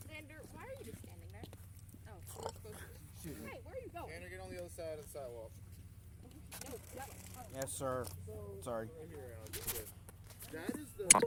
Xander, why are you just standing there? Oh, hey, where are you going? Tanner, get on the other side of the sidewalk. No, that one. Yes, sir. Sorry. That is the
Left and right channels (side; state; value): both; identical; correlation 1.00